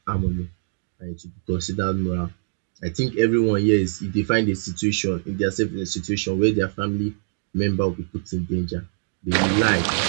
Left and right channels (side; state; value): left; silent; digital silence